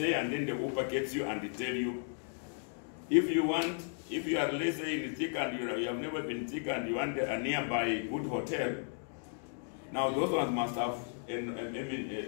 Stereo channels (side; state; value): right; silent; 55 dB below the other